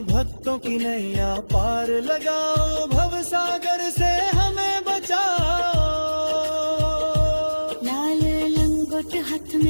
भक्तों की नैया पार लगाओ भव सागर से हमें बचाओ। लाल लंगोट हाथ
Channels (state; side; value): inverted; both; correlation -1.00